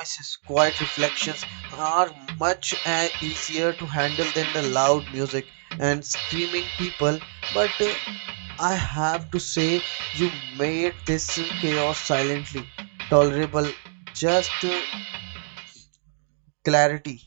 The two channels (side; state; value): left; silent; digital silence